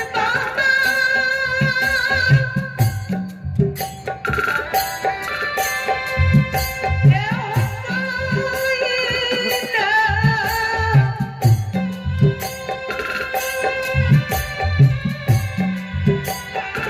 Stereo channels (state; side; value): identical; both; correlation 1.00